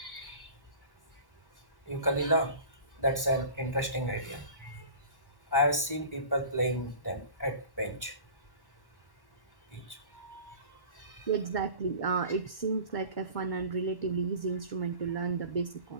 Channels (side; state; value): right; late; 1.1 ms